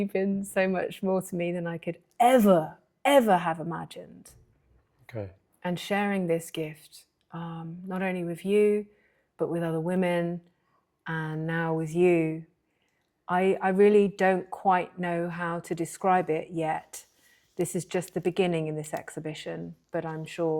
been so much more to me than I could ever have imagined. Okay. And sharing this gift, not only with you, but with other women, and now with you, I really don't quite know how to describe it yet. This is just the beginning in this exhibition, but I'm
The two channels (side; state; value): both; identical; correlation 1.00